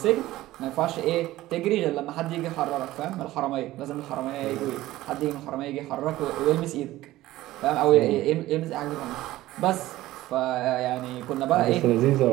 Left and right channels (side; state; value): left; quieter; 16.2 dB